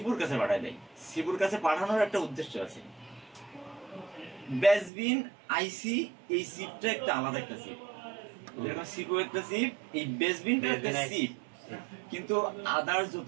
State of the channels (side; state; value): left; drops out; at 4.9 s